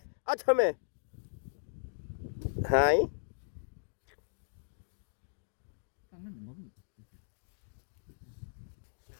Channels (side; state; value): right; silent; digital silence